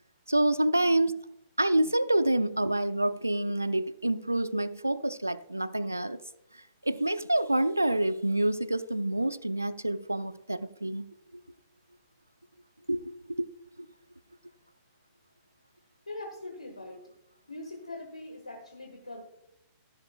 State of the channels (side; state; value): both; inverted; correlation -0.96